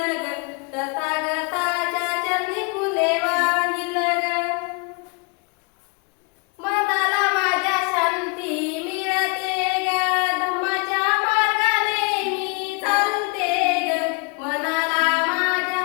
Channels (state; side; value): quieter; right; 31.2 dB